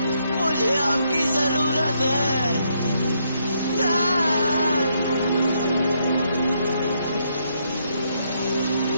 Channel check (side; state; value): both; inverted; correlation -0.75